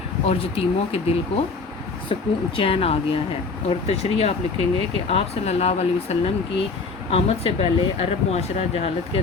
اور یتیموں کے دل کو سکون چین آ گیا ہے۔ اور تشریح آپ لکھیں گے کہ آپ صلی اللہ علیہ وسلم کی آمد سے پہلے عرب معاشرہ جہالت کے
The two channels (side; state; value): right; quieter; 4.3 dB